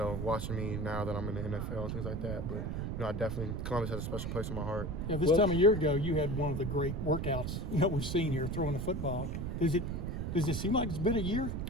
watching me now that I'm in the NFL and things like that. But I definitely Columbus has a special place in my heart. Yeah, this time a year ago, you had one of the great workouts we've seen here throwing the football. Does it seem like it's been a year?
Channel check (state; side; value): noise; right; rumble, 3 dB below the sound